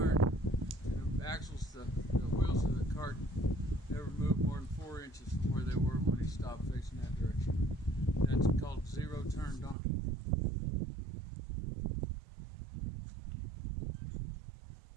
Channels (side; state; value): left; drops out; at 9.8 s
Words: and the axles, the wheels of the cart never moved more than 4 inches from where they were when he stopped facing that direction. That's called zero turn donkey.